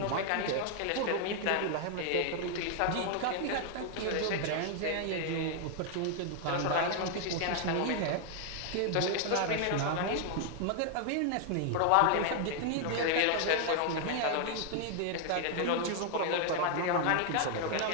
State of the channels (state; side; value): different; both; correlation 0.00